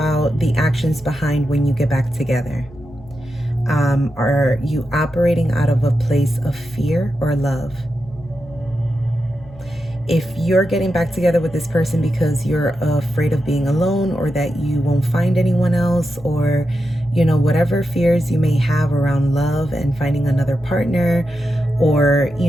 the actions behind when you get back together. Are you operating out of a place of fear or love? If you're getting back together with this person because you're afraid of being alone, or that you won't find anyone else, or, you know, whatever fears you may have around love and finding another partner, or,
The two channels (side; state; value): left; noise; hum, 22 dB below the sound